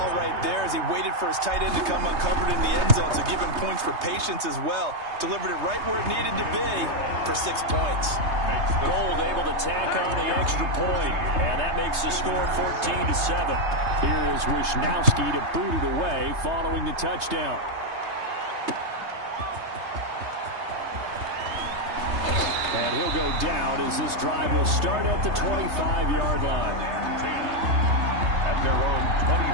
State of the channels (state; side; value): late; left; 3.3 ms